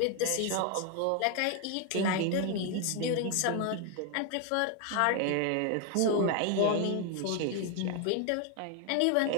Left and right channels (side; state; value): both; different; correlation 0.01